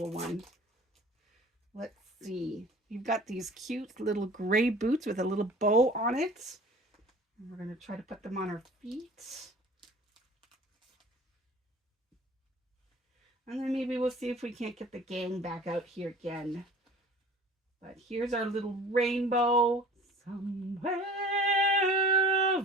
one? Let's see. You've got these cute little gray boots with a little bow on it. And we're going to try to put them on her feet. And then maybe we'll see if we can't get the gang back out here again. But here's our little rainbow. Somewhere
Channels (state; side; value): normal; both; correlation 0.45